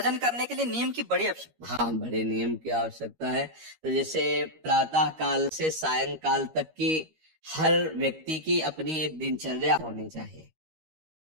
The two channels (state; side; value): late; left; 13 ms